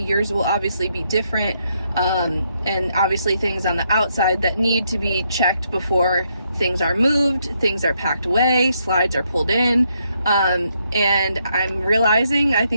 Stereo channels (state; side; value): inverted; both; correlation -0.76